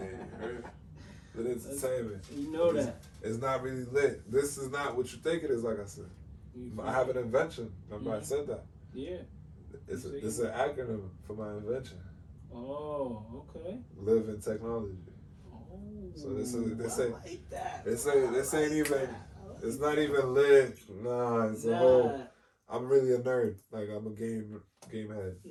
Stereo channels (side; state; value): both; identical; correlation 1.00